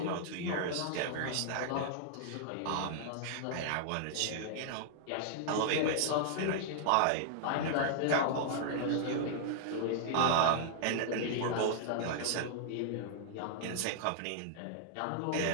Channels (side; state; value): both; different; correlation -0.01